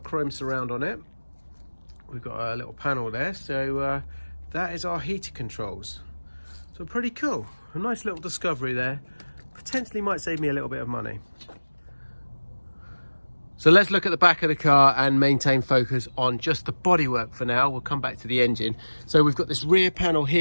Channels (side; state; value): both; inverted; correlation -1.00